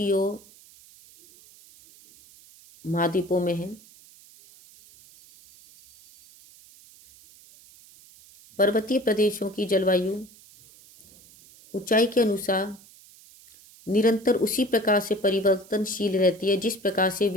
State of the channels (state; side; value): noise; right; hiss, 24 dB below the sound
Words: ओर महाद्वीपों में है। पर्वतीय प्रदेशों की जलवायु ऊंचाई के अनुसार निरंतर उसी प्रकार से परिवर्तनशील रहती है जिस प्रकार से